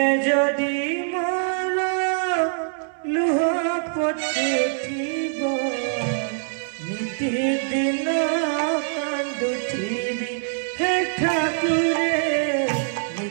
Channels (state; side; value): silent; left; 63 dB below the other